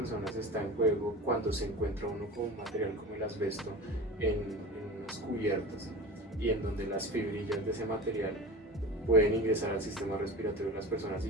está en juego cuando se encuentra uno con un material como el asbesto en unas cubiertas, y en donde las fibrillas de ese material pueden ingresar al sistema respiratorio de las personas y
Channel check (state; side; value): normal; both; correlation 0.32